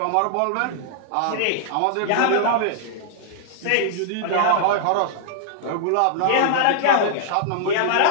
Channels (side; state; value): both; different; correlation -0.01